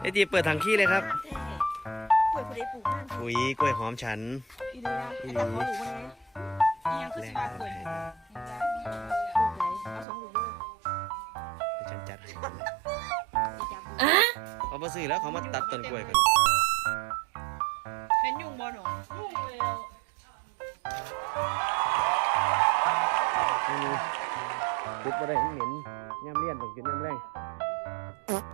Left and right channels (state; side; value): drops out; left; at 10.1 s